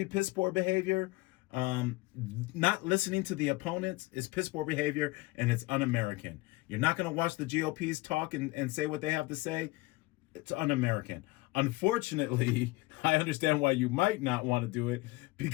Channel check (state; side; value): quieter; right; 21.7 dB